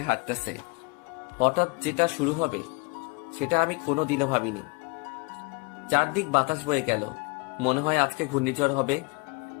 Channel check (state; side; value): quieter; right; 29.7 dB